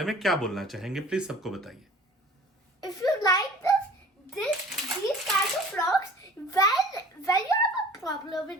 में क्या बोलना चाहेंगे, प्लीज सबको बताइए। If you like these kinds of vlogs, when you have a problem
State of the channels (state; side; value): normal; both; correlation 0.47